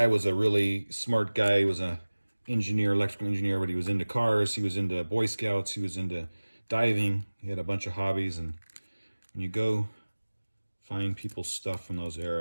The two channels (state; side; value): inverted; both; correlation -1.00